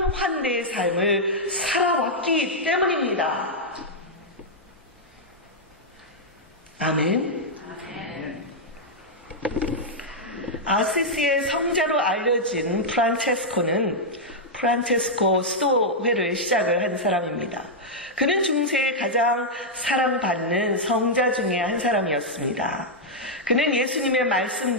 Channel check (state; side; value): normal; both; correlation -0.05